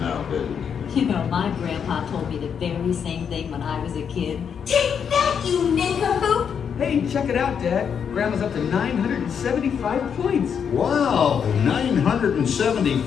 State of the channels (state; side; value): quieter; right; 7.3 dB